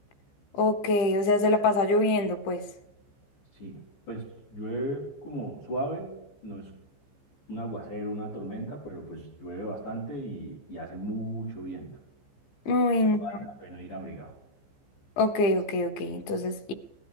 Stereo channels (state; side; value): late; right; 15 ms